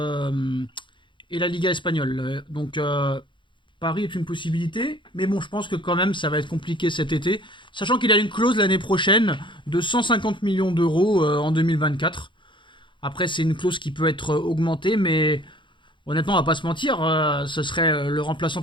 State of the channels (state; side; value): late; right; 0.23 ms